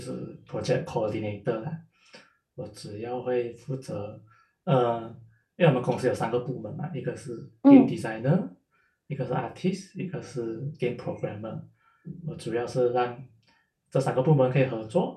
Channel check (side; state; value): both; identical; correlation 1.00